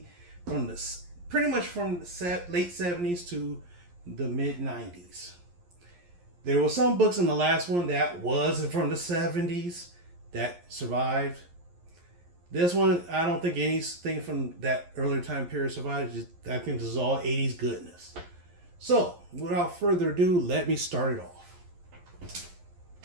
from the pretty much from the late 70s to the mid 90s. There were some books in the last one that wasn't from the 70s that survived. This one, I don't think anything from that earlier time period survived. I think this is all 80s goodness. So, without further ado, let me start it off.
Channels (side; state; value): left; late; 11 ms